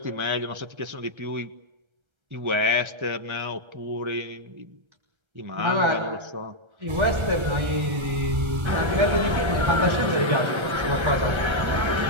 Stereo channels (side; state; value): left; late; 1.3 ms